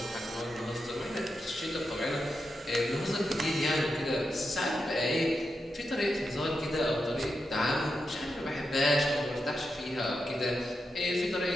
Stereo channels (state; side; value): normal; both; correlation 0.87